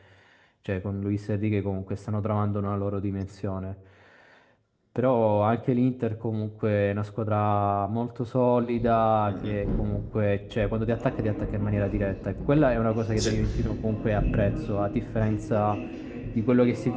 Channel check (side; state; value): both; identical; correlation 1.00